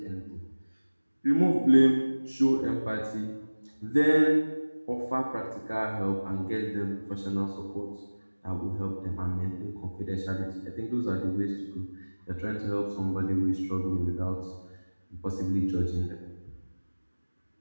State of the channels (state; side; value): inverted; both; correlation -1.00